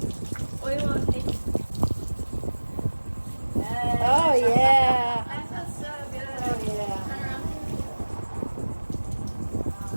on face? Oh yeah. That feels so good. Oh yeah. Turn around.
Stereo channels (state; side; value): inverted; both; correlation -1.00